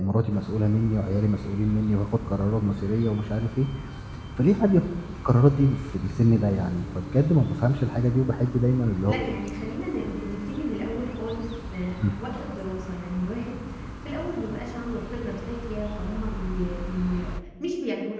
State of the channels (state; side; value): identical; both; correlation 1.00